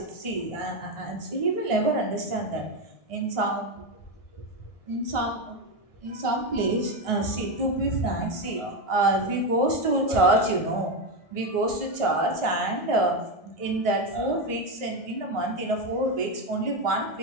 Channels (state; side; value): late; right; 1.6 ms